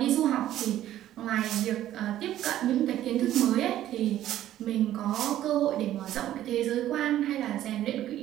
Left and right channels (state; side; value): quieter; left; 12.8 dB